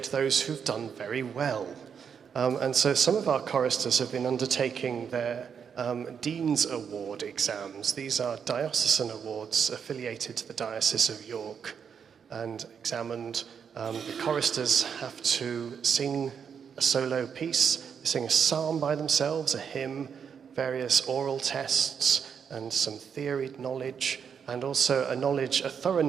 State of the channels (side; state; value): left; quieter; 7.1 dB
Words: those who've done very well. And so some of our choristers have been undertaking their Dean's Award exams. These are diocesan awards affiliated to the Diocese of York, and examined. The choristers have to sing a solo piece, sing a psalm by themselves, a hymn, various oral tests, and some theory knowledge, and also a thorough